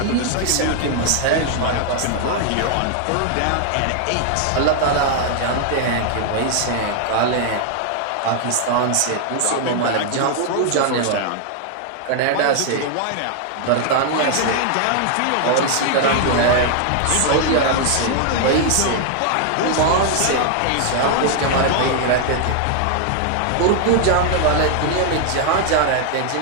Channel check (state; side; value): different; both; correlation 0.00